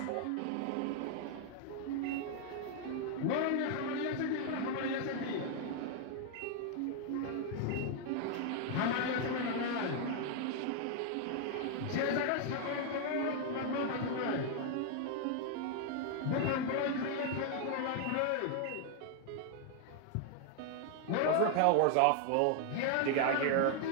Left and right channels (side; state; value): both; different; correlation 0.00